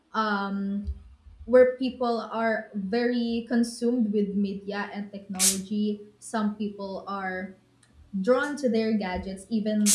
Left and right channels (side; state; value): both; identical; correlation 1.00